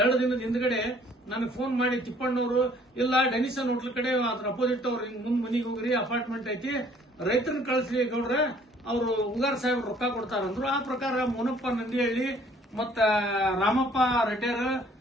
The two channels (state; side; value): normal; both; correlation 0.58